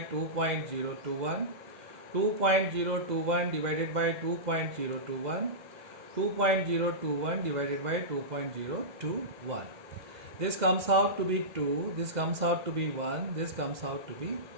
2.021, 2.021 divided by 2.021, 2.021 divided by 2.021. This comes out to be 2, this comes out to be 1, this comes out to be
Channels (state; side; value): late; left; 2.0 ms